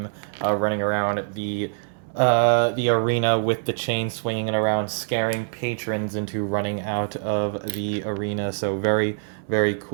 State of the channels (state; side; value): silent; left; 62 dB below the other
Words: running around the arena with the chain swinging around, scaring patrons into running out of the arena. So very, very